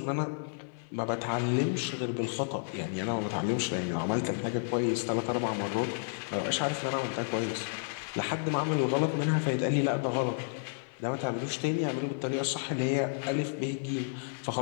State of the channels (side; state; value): right; silent; 57 dB below the other